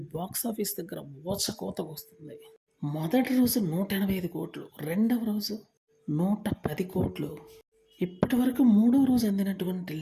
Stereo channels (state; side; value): identical; both; correlation 1.00